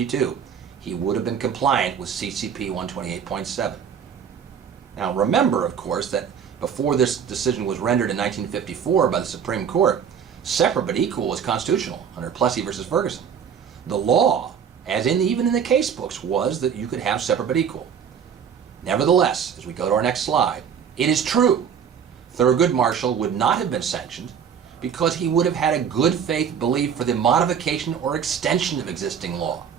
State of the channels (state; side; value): quieter; left; 7.6 dB